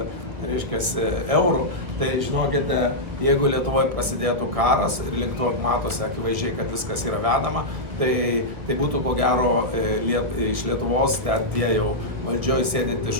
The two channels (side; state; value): left; late; 1.8 ms